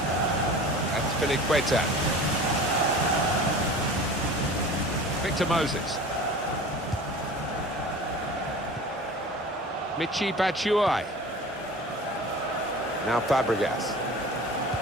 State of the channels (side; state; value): both; normal; correlation 0.39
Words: That's Filiqueta. Victor Moses. Michi Batshuayi. Now Fabregas.